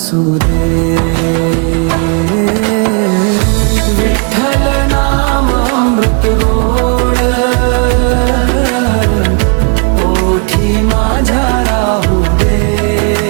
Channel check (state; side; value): quieter; left; 35.8 dB